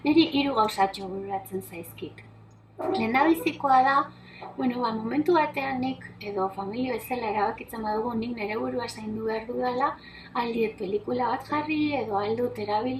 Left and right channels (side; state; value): both; identical; correlation 1.00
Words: Niri 3 gauzatxo bururatzen zaizkit. Lehendabizikoa da, momentu batean nik edo familia bezala erabakitzen badugu nik nire burua zaindu behar dudala, aldiet pelikula bat jarri edo aldut